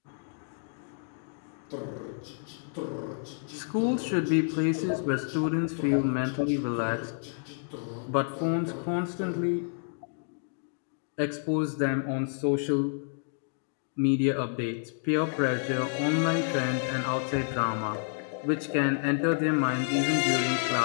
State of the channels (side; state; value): right; silent; digital silence